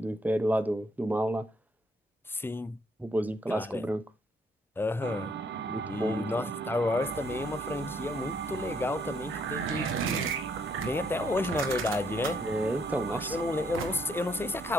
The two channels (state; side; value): normal; both; correlation 0.69